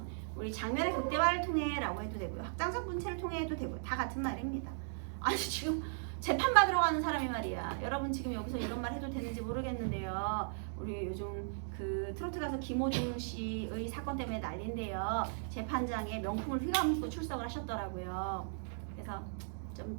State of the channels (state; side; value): silent; left; digital silence